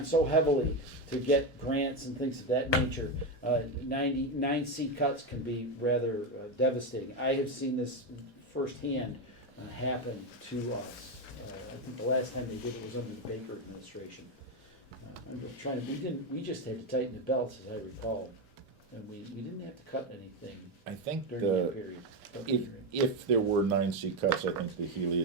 so heavily to get grants and things of that nature. 9C cuts can be rather devastating. I have seen this firsthand happen to us. I think the last time they did it was under the Baker administration. I'm just trying to, we just had to tighten the belts, as I recall. and we didn't have to cut anything I think during that the, period. if there were 9C cuts, I think the Healy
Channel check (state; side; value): normal; both; correlation 0.11